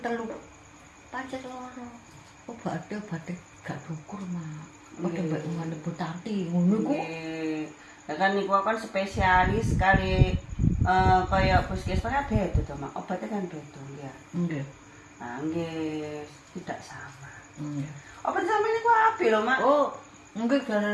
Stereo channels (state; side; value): identical; both; correlation 1.00